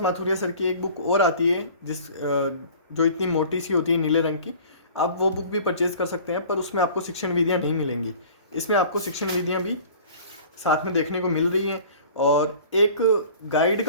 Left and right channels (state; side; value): inverted; both; correlation -0.46